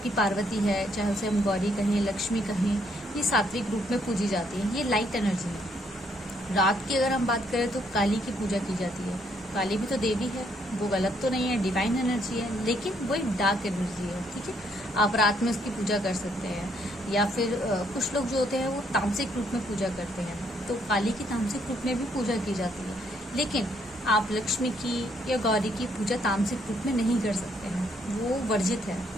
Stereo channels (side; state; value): both; normal; correlation 0.71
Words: पार्वती है, चाहे उसे हम गौरी कहें, लक्ष्मी कहें, ये सात्विक रूप में पूजी जाती है, ये लाइट एनर्जी है। रात की अगर हम बात करें तो काली की पूजा की जाती है। काली भी तो देवी है, वो गलत तो नहीं है, डिवाइन एनर्जी है, लेकिन वो एक डार्क एनर्जी है, ठीक है। आप रात में उसकी पूजा कर सकते हैं। या फिर कुछ लोग जो होते हैं वो तामसिक रूप में पूजा करते हैं, तो काली की तामसिक रूप में भी पूजा की जाती है। लेकिन आप लक्ष्मी की या गौरी की पूजा तामसिक रूप में नहीं कर सकते हैं, वो वर्जित है,